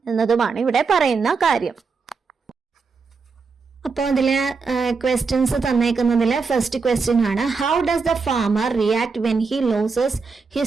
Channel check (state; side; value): quieter; left; 4.8 dB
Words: എന്നതുമാണ് ഇവിടെ പറയുന്ന കാര്യം. അപ്പോൾ അതില് ക്വസ്റ്റ്യൻസ് തന്നേക്കുന്നതില് ഫസ്റ്റ് ക്വസ്റ്റ്യൻ ആണ്, how does the farmer react when he losses